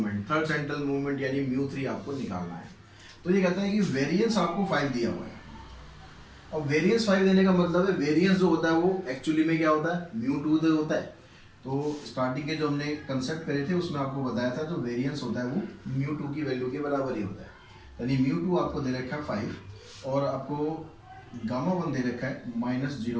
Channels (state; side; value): identical; both; correlation 1.00